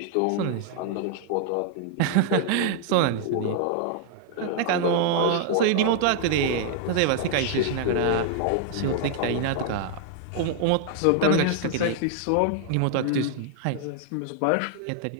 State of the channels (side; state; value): both; different; correlation 0.00